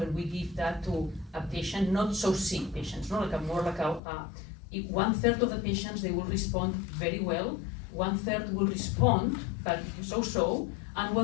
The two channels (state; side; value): drops out; right; at 4.0 s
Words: we give that to a patient, not so sick patients, not like a more like if 1/3 of the patients, they will respond very well, 1/3 will respond, but so-so, and